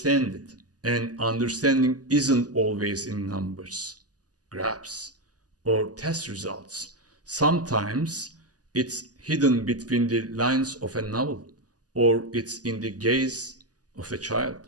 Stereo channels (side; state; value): left; late; 0.68 ms